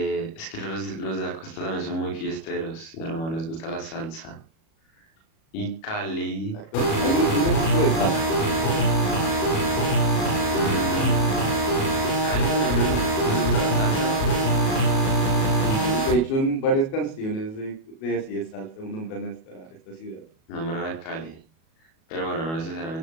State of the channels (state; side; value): late; right; 37 ms